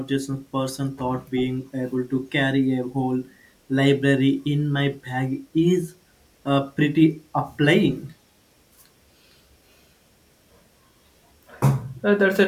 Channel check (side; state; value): both; identical; correlation 1.00